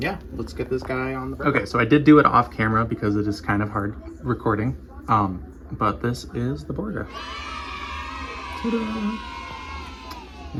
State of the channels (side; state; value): both; identical; correlation 1.00